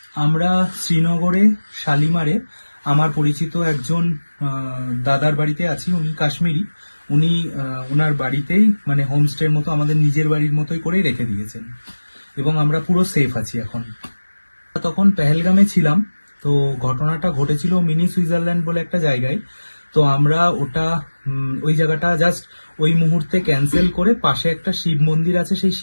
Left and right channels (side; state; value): both; inverted; correlation -1.00